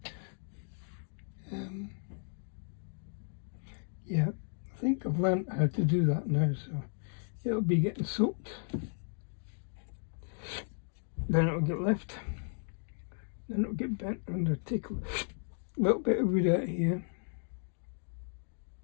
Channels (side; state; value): right; silent; 55 dB below the other